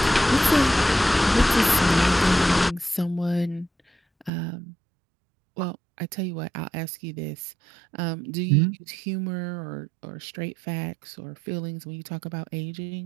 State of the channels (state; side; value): drops out; left; at 4.3 s